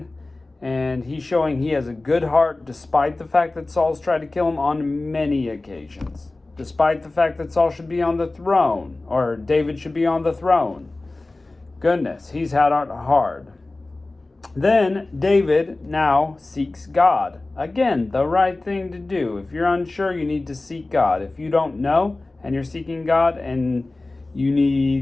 and he's showing he has a good heart despite the fact that Saul's tried to kill him on many occasions. Despite the fact that Saul should be on the throne, or David should be on the throne. Goodness, he's had it hard. Then David now seeks God. Again, the right thing to do. If you're unsure, you need to seek God. If you don't know and you're seeking God and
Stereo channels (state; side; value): quieter; right; 3.1 dB